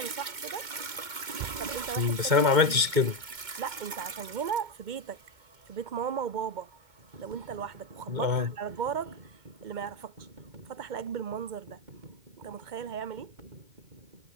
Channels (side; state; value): left; late; 2.2 ms